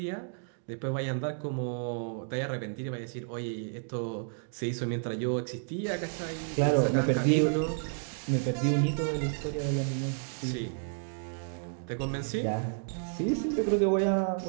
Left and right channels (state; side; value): silent; left; digital silence